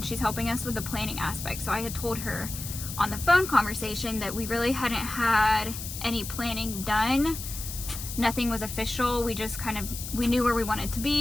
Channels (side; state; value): left; noise; hiss, 8 dB below the sound